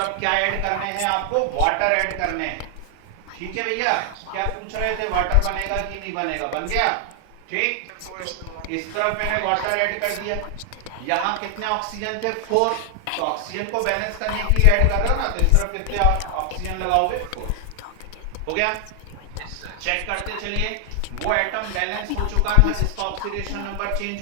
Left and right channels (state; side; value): different; both; correlation 0.00